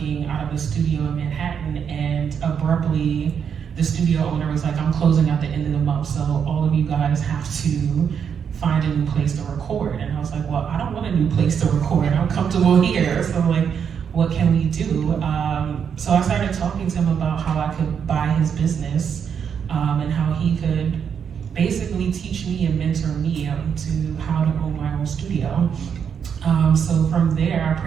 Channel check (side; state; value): left; quieter; 7.4 dB